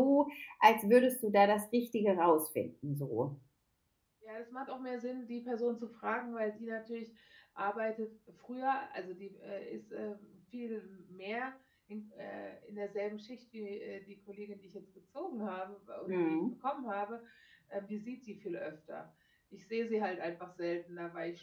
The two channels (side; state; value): both; identical; correlation 1.00